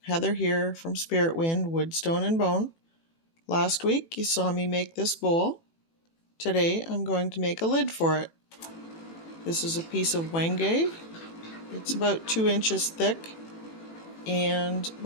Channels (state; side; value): late; right; 18 ms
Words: Heather here from Spiritwynd, Wood, Stone and Bone. Last week you saw me make this bowl. Today I'm going to make a lid for it. This is a piece of wenge. It's about 2 inches thick and